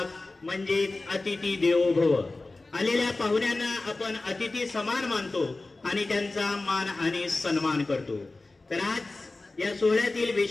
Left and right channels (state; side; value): quieter; right; 3.2 dB